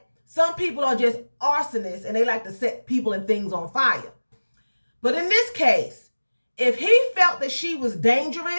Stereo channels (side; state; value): both; inverted; correlation -1.00